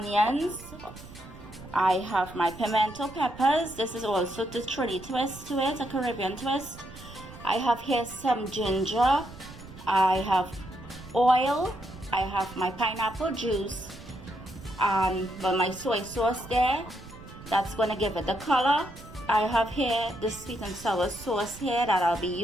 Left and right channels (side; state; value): right; noise; rumble, 17 dB below the sound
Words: I have my pimento peppers. This is also the Trini twist to it, a Caribbean twist. I have here some ginger. I have oil. I have my pineapple juice and my soy sauce there. That's going to give it the color. I have here the sweet and sour sauce here that I'll be